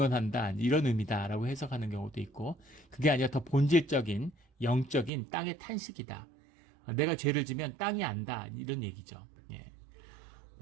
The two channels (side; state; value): left; drops out; at 5.1 s